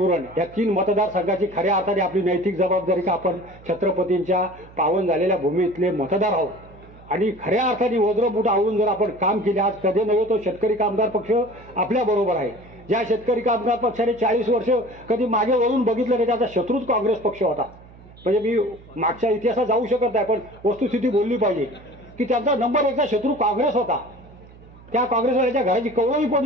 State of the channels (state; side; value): noise; right; hum, 22 dB below the sound